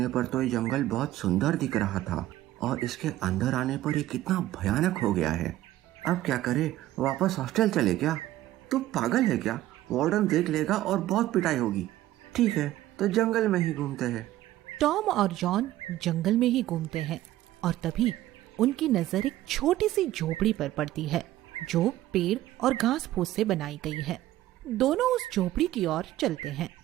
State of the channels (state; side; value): quieter; left; 14.9 dB